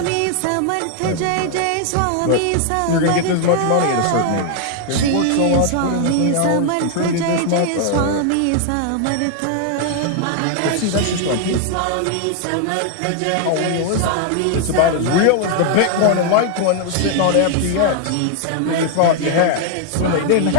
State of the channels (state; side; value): different; both; correlation 0.00